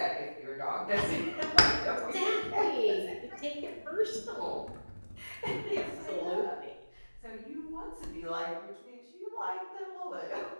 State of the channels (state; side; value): inverted; both; correlation -1.00